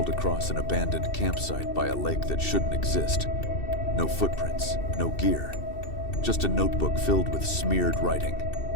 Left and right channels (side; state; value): right; late; 2.7 ms